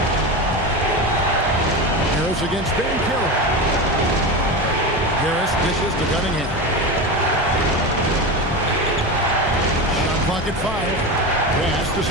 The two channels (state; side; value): normal; both; correlation 0.22